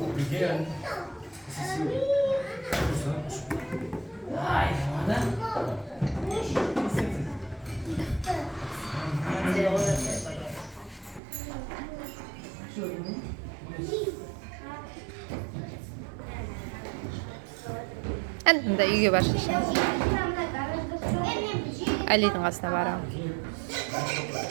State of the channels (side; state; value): left; drops out; at 11.2 s